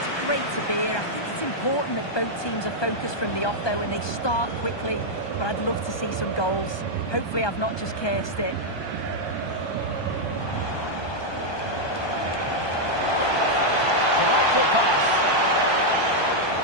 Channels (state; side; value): late; right; 1.2 ms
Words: Great to be here. I think it's important that both teams are focused from the off though and they start quickly, but I'd love to see some goals. Hopefully I've not just cursed it. Delightful pass.